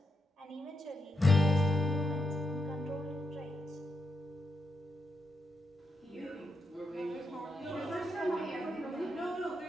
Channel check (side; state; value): both; normal; correlation 0.84